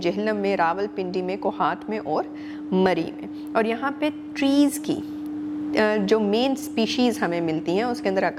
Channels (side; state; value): both; identical; correlation 1.00